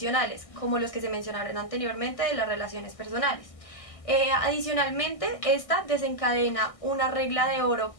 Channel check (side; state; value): right; late; 1.6 ms